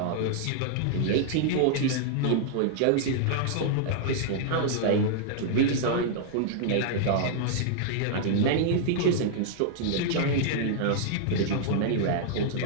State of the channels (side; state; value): both; different; correlation -0.01